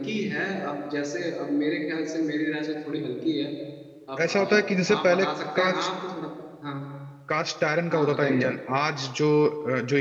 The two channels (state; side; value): identical; both; correlation 1.00